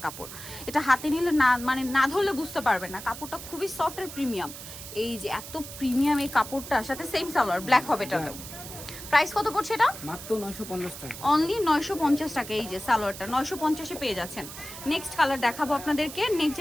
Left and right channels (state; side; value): noise; right; hiss, 12 dB below the sound